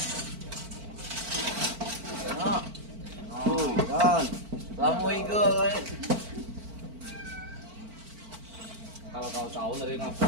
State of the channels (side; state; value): left; late; 4.5 ms